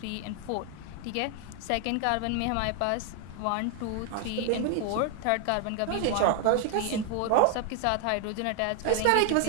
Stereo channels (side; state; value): both; different; correlation 0.00